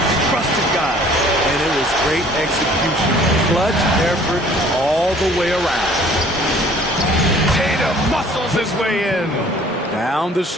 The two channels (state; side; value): normal; both; correlation 0.54